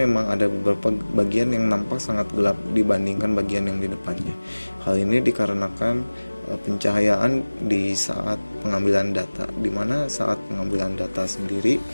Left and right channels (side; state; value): both; inverted; correlation -1.00